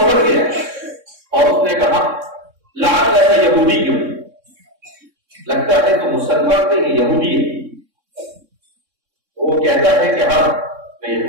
گیا اور اس نے کہا لعل ایسا یہودی کیوں، لگتا ہے تو مسلمان نہیں یہودی ہے۔ وہ کہتا ہے کہ ہاں میں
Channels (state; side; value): late; left; 3.6 ms